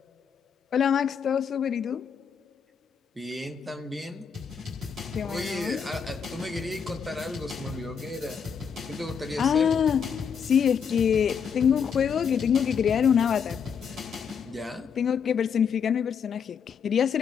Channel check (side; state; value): right; quieter; 6.9 dB